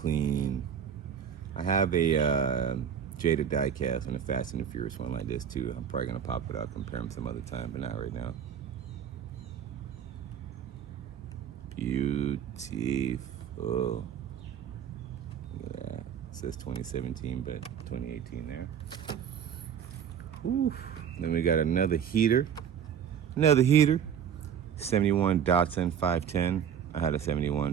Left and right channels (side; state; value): left; quieter; 8.4 dB